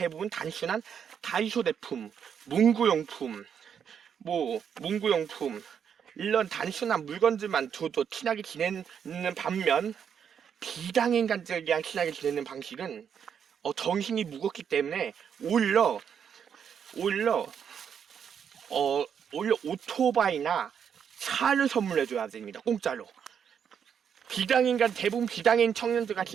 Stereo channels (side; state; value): left; quieter; 7.8 dB